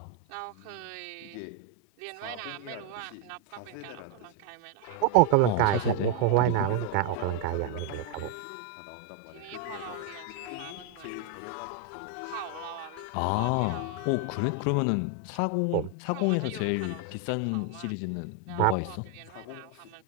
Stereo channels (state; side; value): different; both; correlation 0.00